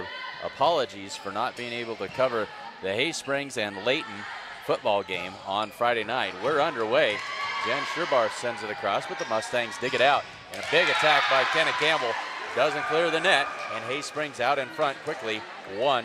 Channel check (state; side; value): identical; both; correlation 1.00